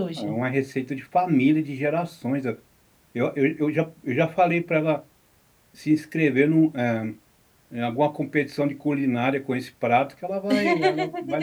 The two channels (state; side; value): identical; both; correlation 1.00